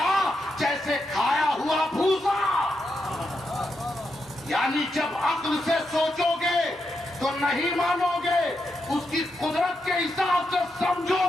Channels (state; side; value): normal; both; correlation 0.84